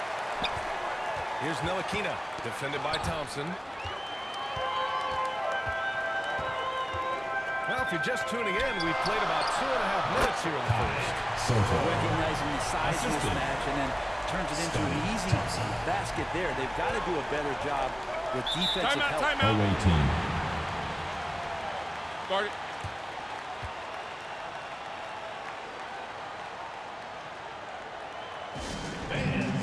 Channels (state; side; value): identical; both; correlation 1.00